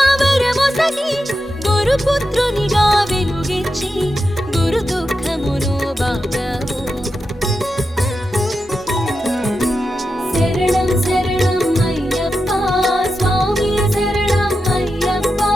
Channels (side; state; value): both; normal; correlation 0.89